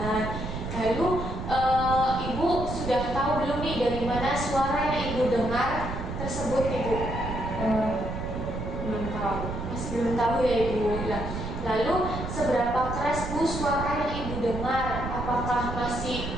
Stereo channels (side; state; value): right; noise; rumble, 6 dB below the sound